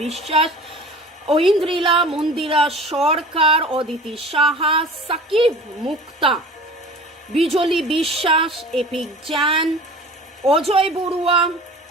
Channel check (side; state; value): both; normal; correlation 0.41